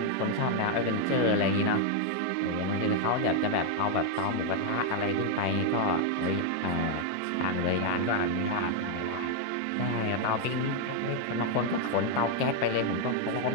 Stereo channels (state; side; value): different; both; correlation 0.00